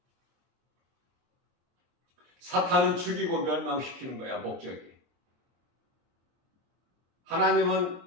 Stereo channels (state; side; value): late; left; 23 ms